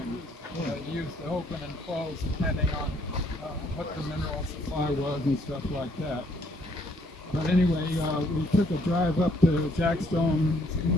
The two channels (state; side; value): normal; both; correlation 0.67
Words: Used to open and close depending on what the mineral supply was and stuff like that. But anyway, we took a drive up to Jack Stone's